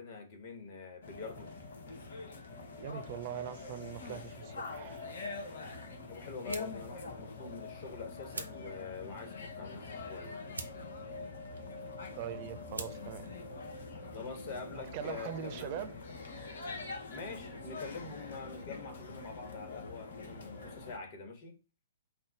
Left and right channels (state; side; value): inverted; both; correlation -0.43